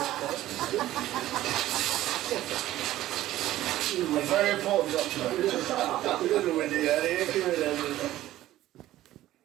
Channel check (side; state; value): left; quieter; 14.5 dB